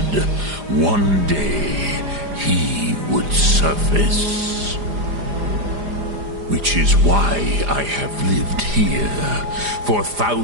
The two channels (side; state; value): left; late; 4.9 ms